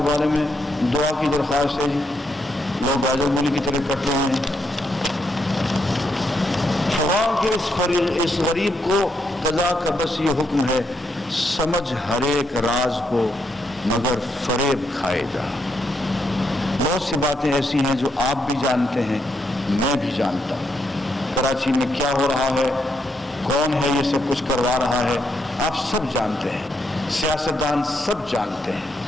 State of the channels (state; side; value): normal; both; correlation 0.79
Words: بارے میں دعا کی درخواست ہے جی. لوگ گاجر مولی کی طرح کٹ رہے ہیں. خواہ کہ اس غریب کو قضا کا بس یہ حکم ہے، سمجھ ہر ایک راز کو مگر فریب کھائے گا. بہت سی باتیں ایسی ہیں جو آپ بھی جانتے ہیں، میں بھی جانتا ہوں. کراچی میں کیا ہو رہا ہے، کون ہے یہ سب کچھ کروا رہا ہے، آپ سب جانتے ہیں. سیاستدان سب جانتے